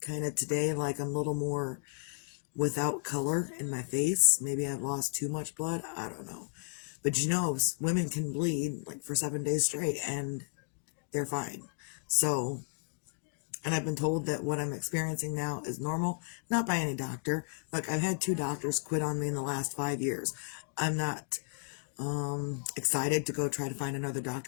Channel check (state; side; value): silent; right; 55 dB below the other